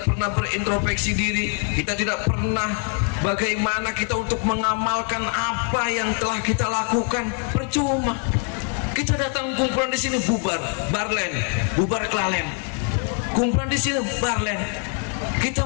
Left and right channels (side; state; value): right; quieter; 38.9 dB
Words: pernah berintrospeksi diri, kita tidak pernah bagaimana kita untuk mengamalkan apa yang telah kita lakukan. Percuma. Kita datang kumpulan di sini bubar, barlen, bubar kelalen. Kumpulan di sini barlen.